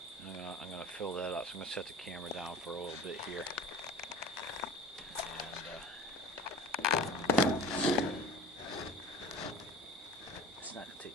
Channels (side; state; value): both; normal; correlation 0.38